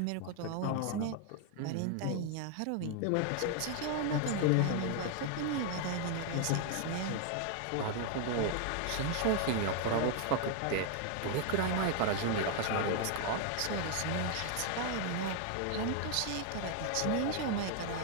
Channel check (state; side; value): different; both; correlation 0.00